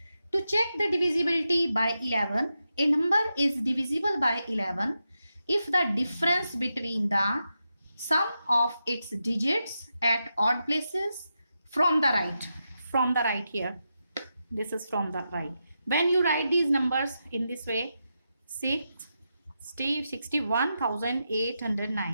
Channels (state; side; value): inverted; both; correlation -0.87